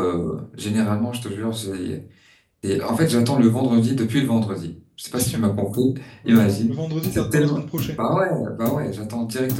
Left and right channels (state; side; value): identical; both; correlation 1.00